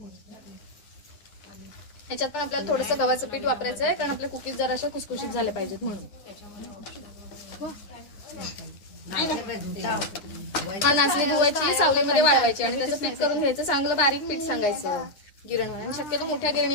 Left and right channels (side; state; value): right; late; 10 ms